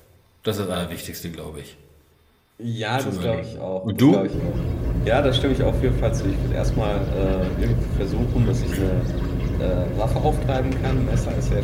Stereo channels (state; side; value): identical; both; correlation 1.00